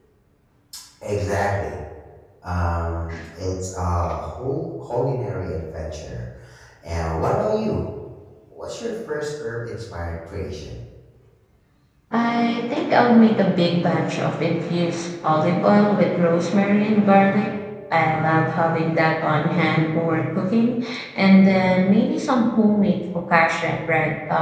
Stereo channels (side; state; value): both; identical; correlation 1.00